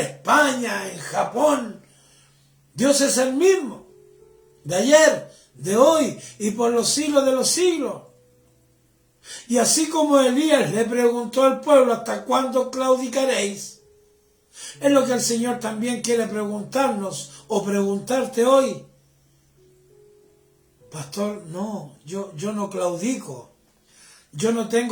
en Japón. Dios es el mismo, de ayer, de hoy y por los siglos de los siglos. Y así como Elías le preguntó al pueblo, ¿hasta cuándo claudicaréis? Es lo que el Señor también quiere preguntarnos o preguntarte hoy. Pastor, no, yo no claudico. Yo no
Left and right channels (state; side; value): identical; both; correlation 1.00